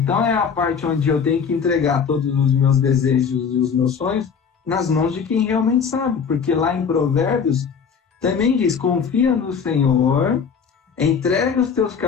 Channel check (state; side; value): quieter; right; 6.4 dB